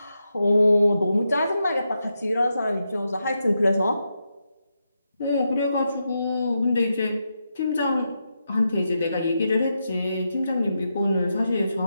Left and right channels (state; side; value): inverted; both; correlation -0.86